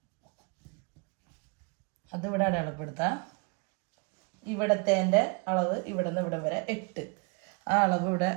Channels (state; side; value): quieter; left; 32.6 dB